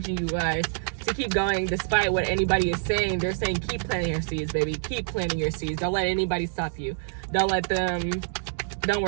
you guys to keep going despite what anybody is saying. They're saying keep planting your seeds, baby. Keep planting your seeds. Don't let anybody stop you. Don't worry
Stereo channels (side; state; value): left; silent; digital silence